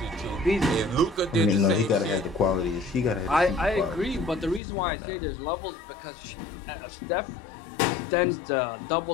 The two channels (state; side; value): drops out; right; at 4.6 s